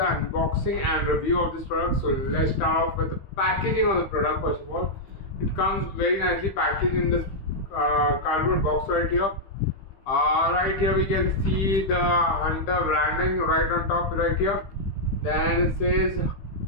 and review of this product. So let's start off with the packaging of the product. First of all, it comes very nicely packaged in this cardboard box right here. Right here we can see the Hunter branding right on top right here. Then it says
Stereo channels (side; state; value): right; late; 15 ms